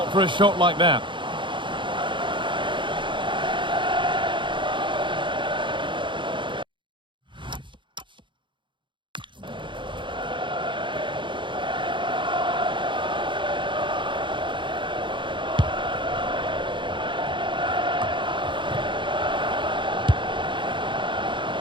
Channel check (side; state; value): left; late; 0.23 ms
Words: for a shot like that.